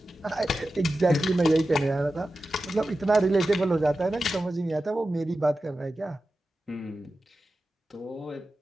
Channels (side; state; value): both; normal; correlation 0.93